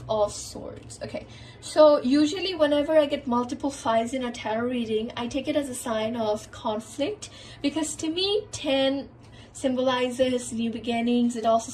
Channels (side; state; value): both; identical; correlation 1.00